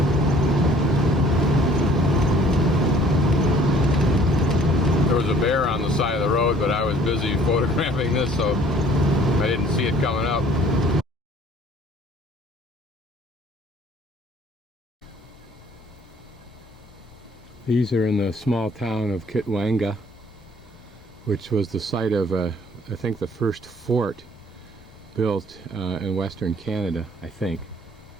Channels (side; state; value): both; normal; correlation 0.56